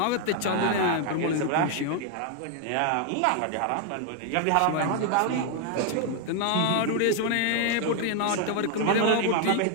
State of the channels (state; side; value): different; both; correlation 0.00